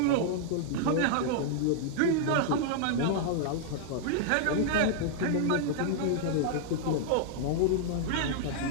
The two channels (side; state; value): both; different; correlation -0.01